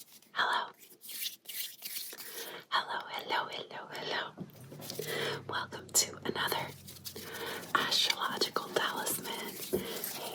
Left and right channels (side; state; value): both; identical; correlation 1.00